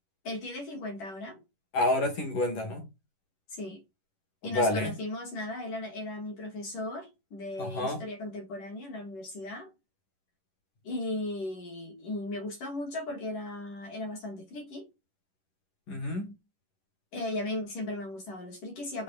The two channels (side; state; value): right; late; 11 ms